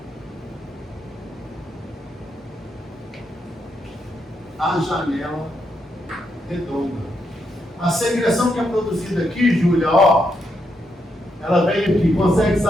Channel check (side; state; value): both; normal; correlation 0.80